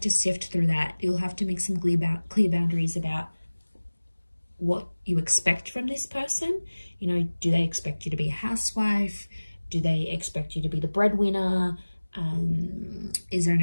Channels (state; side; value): inverted; both; correlation -1.00